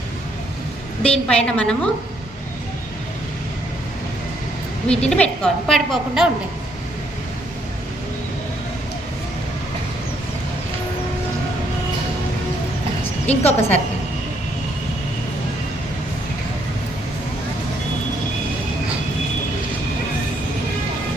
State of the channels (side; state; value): both; normal; correlation 0.71